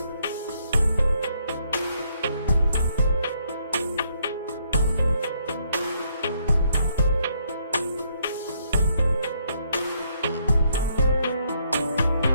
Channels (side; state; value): both; inverted; correlation -0.71